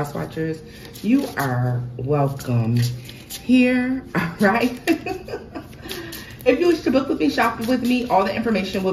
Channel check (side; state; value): both; identical; correlation 1.00